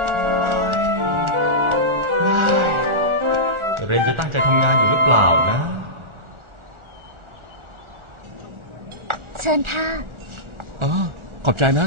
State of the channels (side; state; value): left; late; 1.4 ms